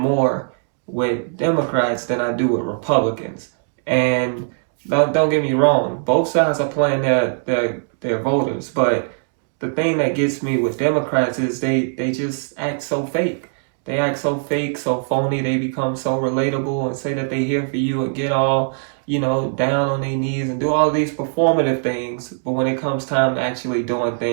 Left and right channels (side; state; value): left; silent; digital silence